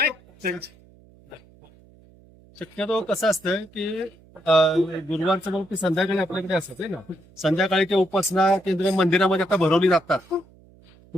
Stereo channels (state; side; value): noise; right; hum, 27 dB below the sound